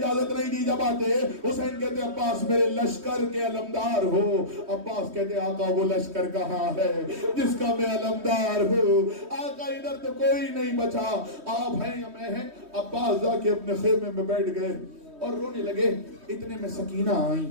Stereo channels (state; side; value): late; left; 3.2 ms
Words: نہیں دی. جب آتے حسین کہتے عباس میرے لشکر کے علمدار ہو. عباس کہتے آقا وہ لشکر کہاں ہے جس کا میں علمدار ہوں. آقا ادھر تو کوئی نہیں بچا، آپ ہیں یا میں ہیں. عباس جا کے اپنے خیمے میں بیٹھ گئے اور رونے لگے. اتنے میں سکینہ آئی